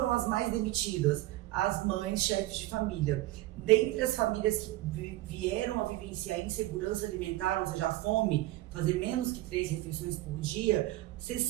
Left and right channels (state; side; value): quieter; left; 16.8 dB